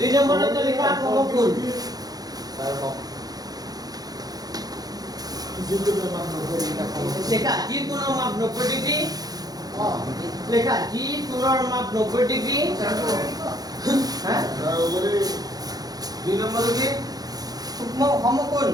নম্বৰতে লিখা সমকোণ লেখা যি কোণৰ মাপ 90 ডিগ্ৰী লেখা যি কোণৰ মাপ 90 ডিগ্ৰী হ্যাঁ 2 নম্বৰ কি? সমকোণ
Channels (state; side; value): late; left; 0.19 ms